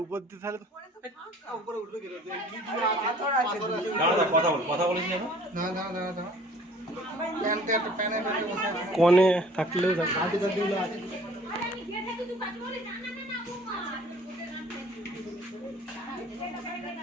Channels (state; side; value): normal; both; correlation 0.52